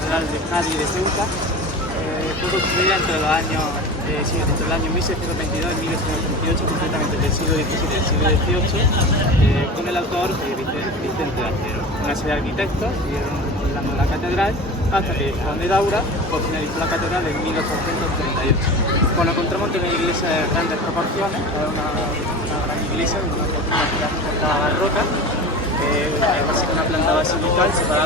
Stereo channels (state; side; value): normal; both; correlation 0.32